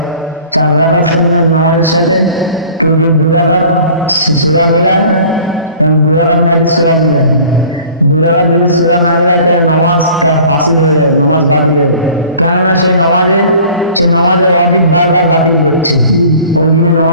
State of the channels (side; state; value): both; inverted; correlation -0.48